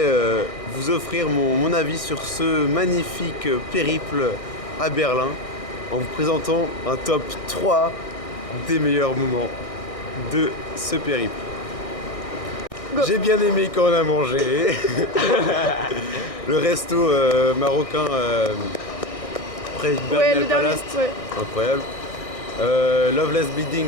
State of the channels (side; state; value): right; late; 1.6 ms